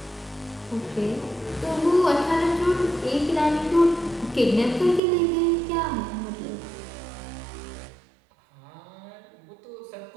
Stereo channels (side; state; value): left; drops out; at 5.0 s